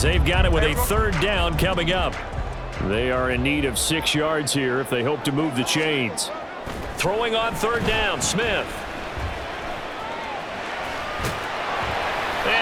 they've got it with a third down coming up. They are in need of 6 yards here if they hope to move the chains. Throwing on third down, Smith.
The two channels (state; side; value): identical; both; correlation 1.00